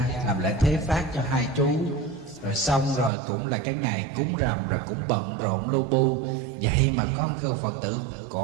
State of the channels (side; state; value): left; drops out; at 3.1 s